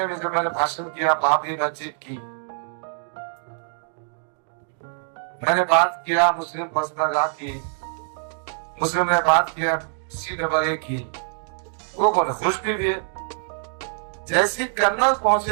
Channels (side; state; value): left; silent; digital silence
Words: में जब मैंने भाषण किया बाबरी मस्जिद की, मैंने बात किया मुस्लिम पर्सनल की, मुस्लिम ने बात किया CAA की, वो बोले खुश भी है। जैसे कर्नल